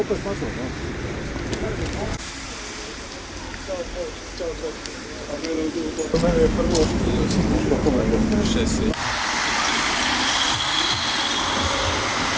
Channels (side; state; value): both; identical; correlation 1.00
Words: opet na to, no. Mene je prvo... 6.